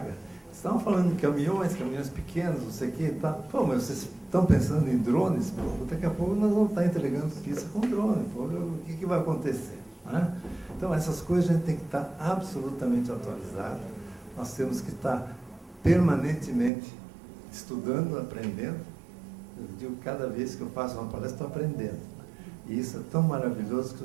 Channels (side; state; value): left; drops out; at 16.7 s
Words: estavam falando de caminhões pequenos, não sei o quê, tá? Pô, mas vocês estão pensando em drones? Pô, daqui a pouco nós vamos estar entregando pizza com drone. Pô, o que vai acontecer? Né? Então, essas coisas a gente tem que estar absolutamente atualizado. Nós temos que estar permanentemente estudando, aprendendo. Eu digo, cada vez que eu faço uma palestra, estou aprendendo. E isso é tão maravilhoso que